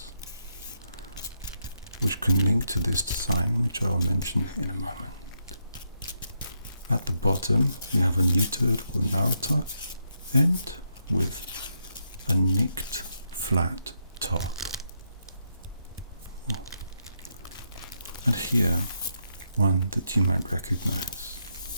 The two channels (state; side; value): inverted; both; correlation -0.81